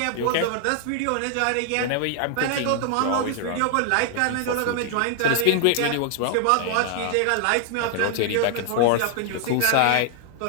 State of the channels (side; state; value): both; different; correlation 0.00